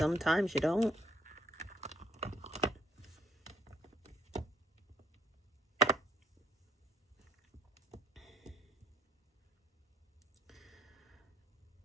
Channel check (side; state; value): both; normal; correlation 0.63